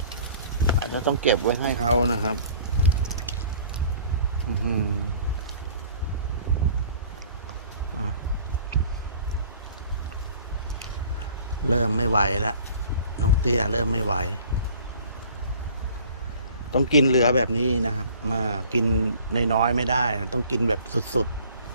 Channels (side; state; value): both; inverted; correlation -0.51